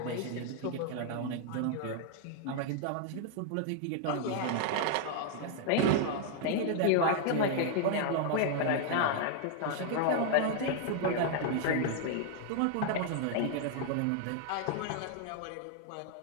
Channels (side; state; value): both; different; correlation 0.00